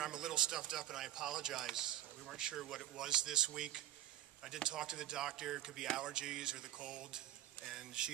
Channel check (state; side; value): quieter; left; 13.2 dB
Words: a little stuffed up and I apologize. We weren't sure what it was this week. I did talk to the doctor. It could be allergies or the cold, and